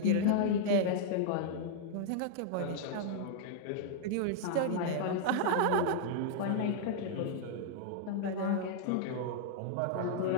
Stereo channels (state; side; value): different; both; correlation -0.01